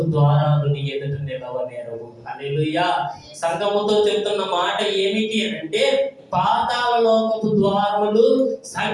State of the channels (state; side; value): identical; both; correlation 1.00